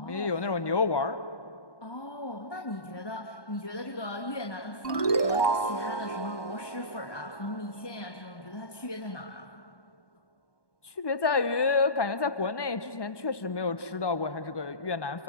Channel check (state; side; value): late; right; 1.2 ms